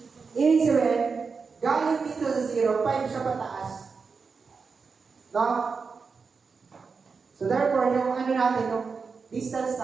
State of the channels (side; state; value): left; quieter; 5.1 dB